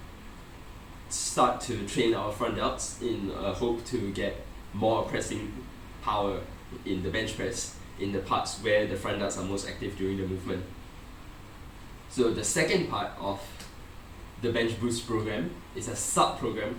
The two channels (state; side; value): identical; both; correlation 1.00